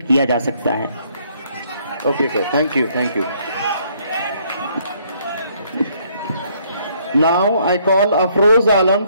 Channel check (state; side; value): inverted; both; correlation -0.67